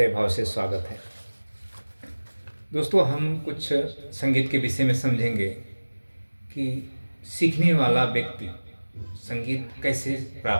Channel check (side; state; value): both; inverted; correlation -1.00